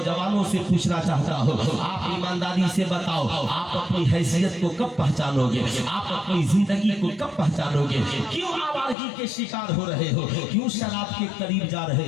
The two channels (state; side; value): drops out; right; at 9.0 s